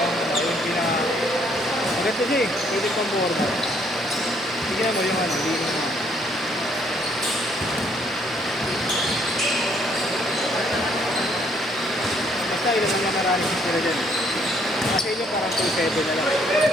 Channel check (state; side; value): normal; both; correlation 0.67